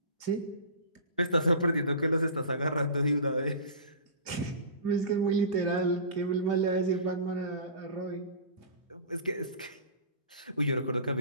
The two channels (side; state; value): both; inverted; correlation -0.35